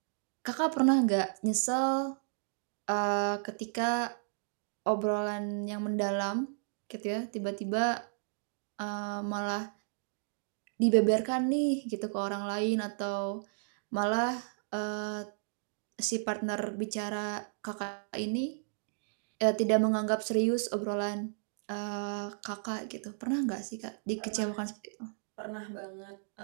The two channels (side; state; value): left; silent; digital silence